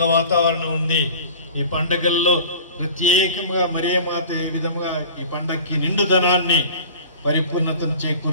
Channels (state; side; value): inverted; both; correlation -0.41